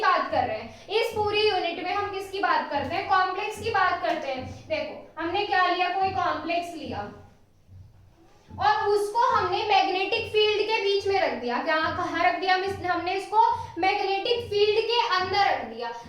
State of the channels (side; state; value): both; identical; correlation 1.00